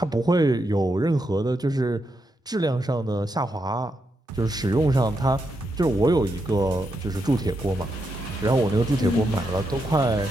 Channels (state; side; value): normal; both; correlation 0.83